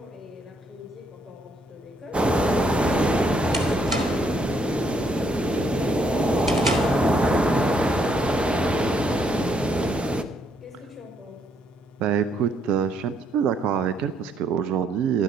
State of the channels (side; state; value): both; normal; correlation 0.71